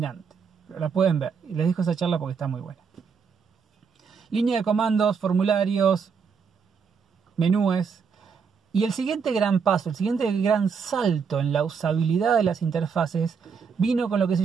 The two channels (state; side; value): quieter; left; 6.0 dB